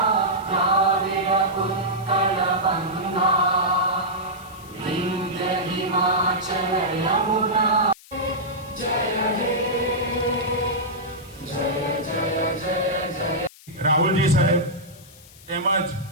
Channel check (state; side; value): noise; left; hiss, 22 dB below the sound